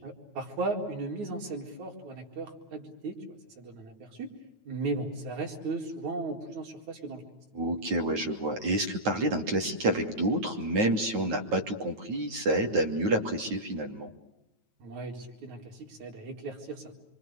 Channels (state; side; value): late; left; 9.3 ms